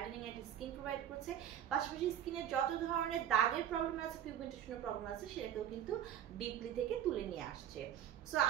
একটা স্কিন প্রোভাইড করছে। পাশাপাশি স্কিনের যত ধরনের দাগের প্রবলেম আছে, পিগমেন্টেশনের প্রবলেম আছে সেটাকেও কিন্তু ডিপলি থেকে তুলে নিয়ে আসছে। সো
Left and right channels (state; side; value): quieter; left; 10.4 dB